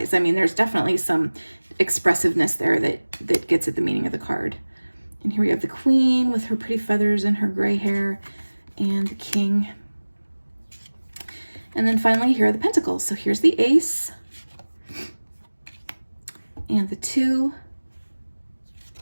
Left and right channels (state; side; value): inverted; both; correlation -1.00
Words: I mean, there's definitely some expressiveness there that gets at the meaning of the card. And here we have the Queen with her pretty feathers and her gray hair, and the King. And then finally, here are the Pentacles. So here's the Ace and the 2